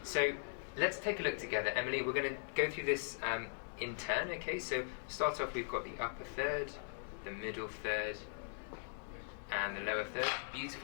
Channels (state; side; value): silent; right; digital silence